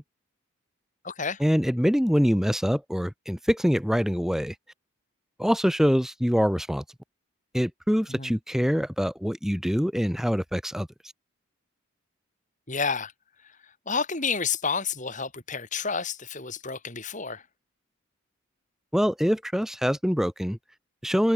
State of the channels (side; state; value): both; normal; correlation 0.86